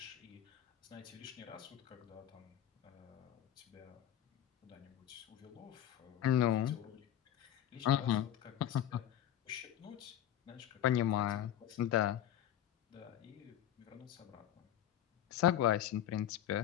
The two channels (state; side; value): quieter; right; 11.3 dB